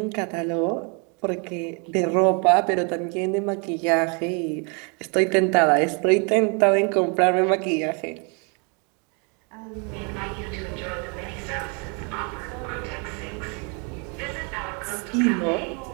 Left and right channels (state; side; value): quieter; left; 34.8 dB